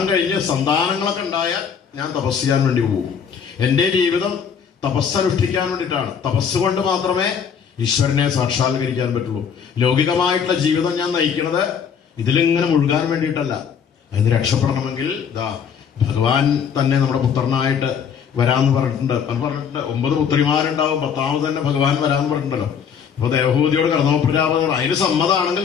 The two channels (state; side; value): quieter; right; 7.2 dB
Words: കഴിഞ്ഞ് സന്താനങ്ങളൊക്കെ ഉണ്ടായാൽ ഞാൻ തപസ് ചെയ്യാൻ വേണ്ടി പോകും. എന്റെ ജീവിതം തപസ്സനുഷ്ഠിക്കാൻ വേണ്ടിയിട്ടാണ്. തപസ് കൊണ്ട് മാത്രമേ ഈശ്വരനെ സാക്ഷാത്കരിക്കാൻ പറ്റുള്ളൂ. ലൗകികമായിട്ടുള്ള ജീവിതം ഞാൻ നയിക്കുന്നത് ഇതിലിങ്ങനെ മുഴുകാൻ വേണ്ടിയിട്ടല്ല. അതിന് രക്ഷപ്പെടണമെങ്കിൽ ഭഗവാൻ തന്നെ നമ്മുടെ പുത്രനായിട്ട് വരാന്ന് പറഞ്ഞിട്ടുണ്ട്. 9 പുത്രിമാരുണ്ടാവും, 10ാമത് തന്നെ ഭഗവാൻ വരാന്ന് പറഞ്ഞിട്ടുണ്ടല്ലോ. അപ്പൊ ദേവഹൂതിയോട് കർദമ പ്രജാപതി അതിന് സമ്മതമാണെങ്കിൽ